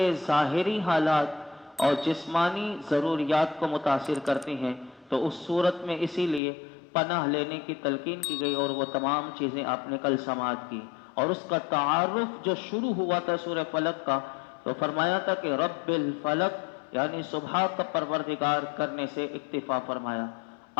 ظاہری حالات اور جسمانی ضروریات کو متاثر کرتی ہیں، تو اس صورت میں اسی لیے پناہ لینے کی تلقین کی گئی، اور وہ تمام چیزیں آپ نے کل سماعت کی۔ اور اس کا تعارف جو شروع ہوا تھا سورہ فلق کا، تو فرمایا تھا کہ رب الفلق، یعنی صبح کا پروردگار کرنے سے اکتفا فرمایا۔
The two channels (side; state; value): right; drops out; at 6.4 s